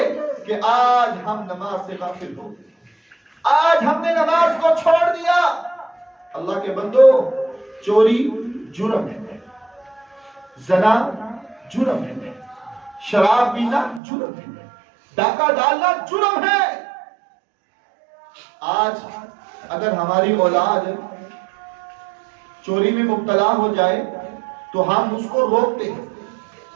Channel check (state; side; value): drops out; left; at 14.0 s